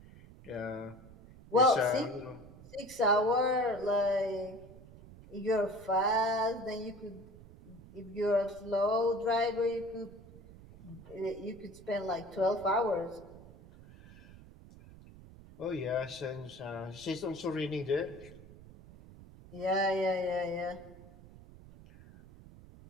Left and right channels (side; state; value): right; noise; rumble, 19 dB below the sound